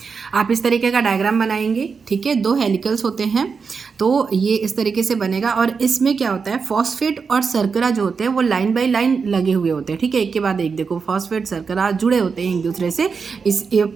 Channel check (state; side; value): quieter; left; 5.4 dB